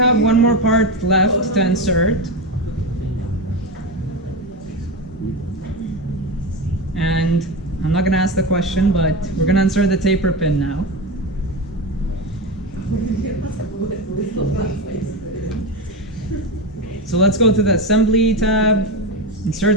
one more part left to insert. And I'm not gonna ask the question, but we're gonna insert the taper pin now. So let's go to the assembly tab,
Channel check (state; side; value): normal; both; correlation 0.18